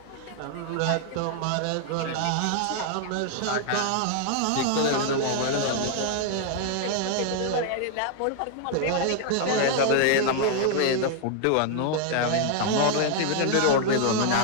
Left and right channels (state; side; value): different; both; correlation 0.00